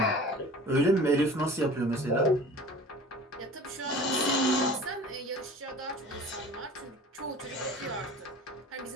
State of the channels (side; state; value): both; normal; correlation 0.42